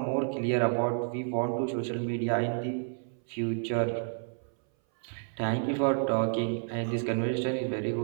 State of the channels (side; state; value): left; silent; 58 dB below the other